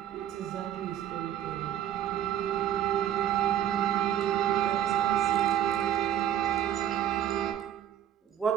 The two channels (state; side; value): quieter; left; 10.9 dB